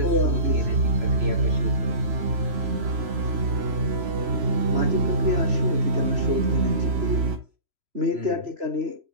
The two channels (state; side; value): late; left; 3.0 ms